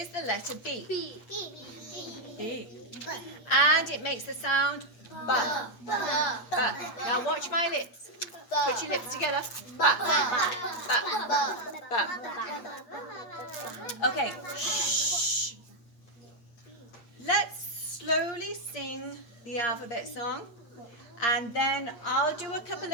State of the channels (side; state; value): right; late; 8.6 ms